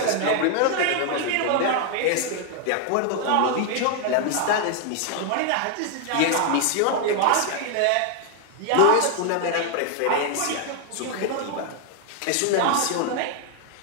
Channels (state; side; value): different; both; correlation 0.00